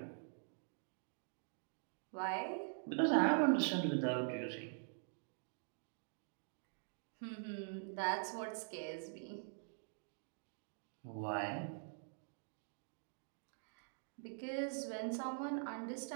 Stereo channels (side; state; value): left; silent; digital silence